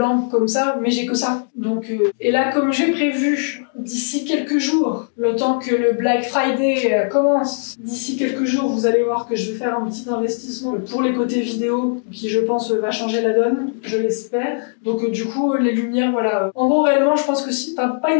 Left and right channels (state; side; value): silent; right; 65 dB below the other